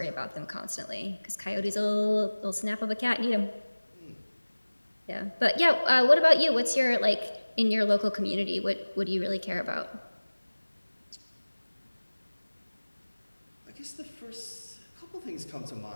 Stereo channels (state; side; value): inverted; both; correlation -1.00